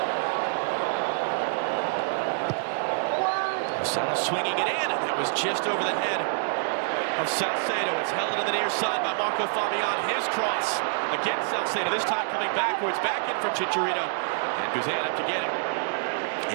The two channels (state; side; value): silent; left; digital silence